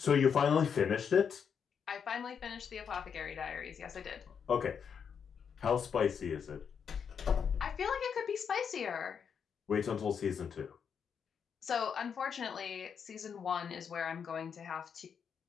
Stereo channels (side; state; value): right; quieter; 7.0 dB